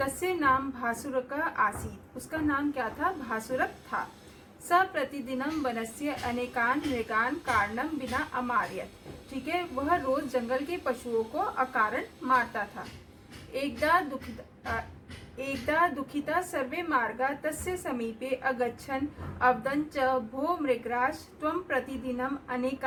नाम भासुरक आसीत्, उसका नाम क्या था, भासुरक था। स प्रतिदिनम वनस्य अनेकान मृगान कारणम बिना अमार्यत, ठीक है, वह रोज जंगल के पशुओं को अकारण मारता था। एकदा दुखिता सर्वे मार्गा तस्य समीपे अगच्छन् अवदन् च भो मृगराज त्वं प्रतिदिनम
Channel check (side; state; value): both; identical; correlation 1.00